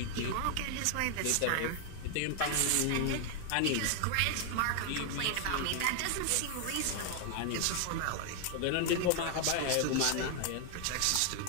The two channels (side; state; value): both; different; correlation 0.00